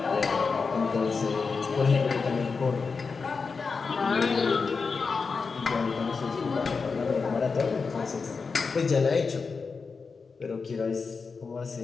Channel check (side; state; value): right; quieter; 4.9 dB